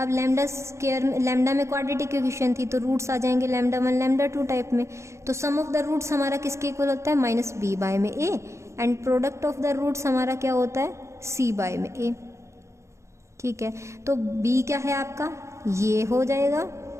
लैम्डा स्क्वायर में, लैम्डा में क्वाड्रेटिक इक्वेशन थी, तो रूट्स आ जाएंगे λ1 λ2 टाइप में। तो सम ऑफ द रूट्स हमारा किसके इक्वल होता है, माइनस बी बाय में A, and product of the roots हमारा क्या होता है, सी बाय में ए, ठीक है। तो बी क्या है आपका, ये हो जाएगा,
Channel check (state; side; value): late; left; 0.14 ms